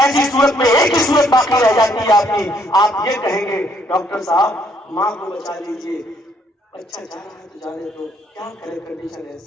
ایسی صورت میں ایک ہی صورت باقی رہ جاتی ہے آپ کی، آپ یہ کہیں گے ڈاکٹر صاحب ماں کو بچا لیجیے، بچہ جا رہا ہے تو جانے دو، کیا کرے کنڈیشن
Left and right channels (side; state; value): both; normal; correlation 0.68